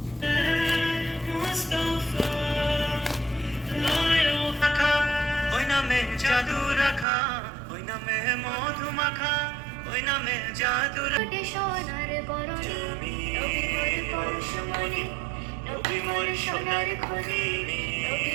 মুস্তাফা লায়ো পাখা ওই নামে জাদু রাখা ওই নামে মধু মাখা ওই নামে জাদু কোটে সোনার বরণি নবী মোর পরশমণি নবী মোর সোনার খনি নবী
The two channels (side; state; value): left; drops out; at 7.1 s